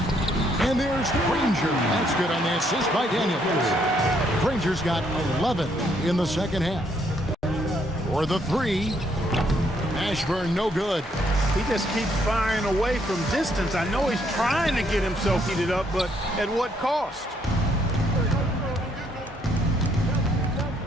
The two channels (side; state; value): both; normal; correlation 0.70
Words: And there's Granger. That's good on the assist by Daniels. Granger's got 11 in the second half. For the 3. Ashburn no good. He just keeps firing away from distance. I know he's trying to get himself heated up, but at what cost?